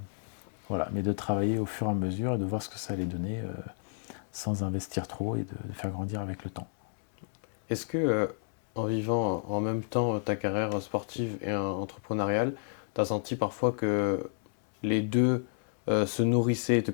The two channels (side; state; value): right; silent; digital silence